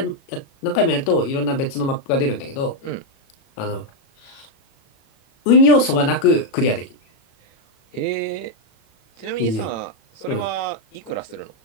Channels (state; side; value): late; right; 37 ms